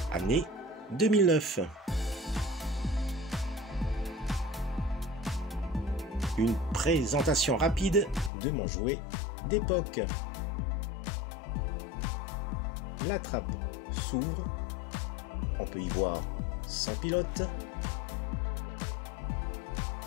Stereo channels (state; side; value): drops out; right; at 8.3 s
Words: année 2009. Une présentation rapide de mon jouet d'époque. La trappe s'ouvre, on peut y voir son pilote.